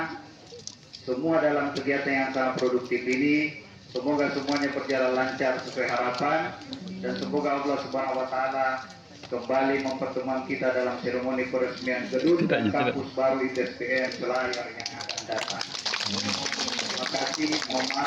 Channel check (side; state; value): both; identical; correlation 1.00